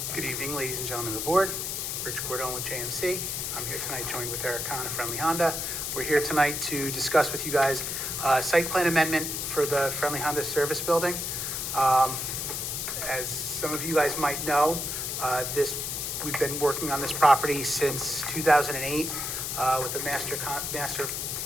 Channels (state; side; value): noise; left; hiss, 3 dB below the sound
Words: Good evening, ladies and gentlemen of the board. Rich Cordone with JMC. I'm here tonight joined with Eric Kahn of Friendly Honda. We're here tonight to discuss with you guys site plan amendment for the Friendly Honda service building. As some of you guys might know, we've been working on this property since 2008 with a